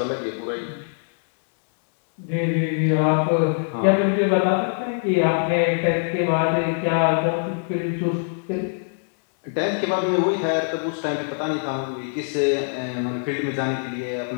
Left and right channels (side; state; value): right; silent; digital silence